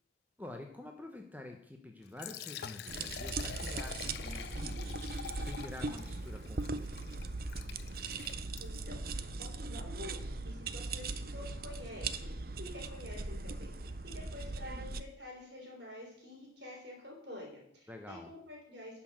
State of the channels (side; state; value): both; normal; correlation 0.53